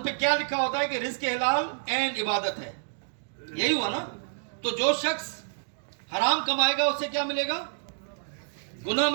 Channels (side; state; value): left; silent; digital silence